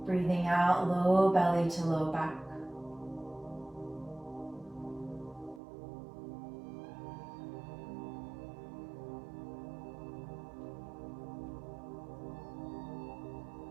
Breathing out, low belly to low back.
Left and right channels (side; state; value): left; drops out; at 5.6 s